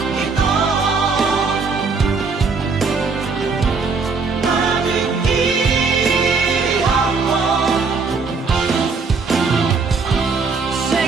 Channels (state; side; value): quieter; left; 4.6 dB